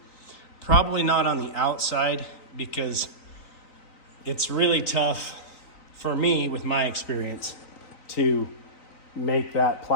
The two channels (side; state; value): right; late; 3.9 ms